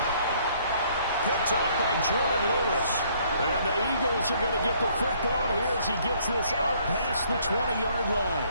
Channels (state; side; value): inverted; both; correlation -0.63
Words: Picked off by Jordan Lewis. And the Eagles are going to get the football here as he gets this up past the 20-yard line.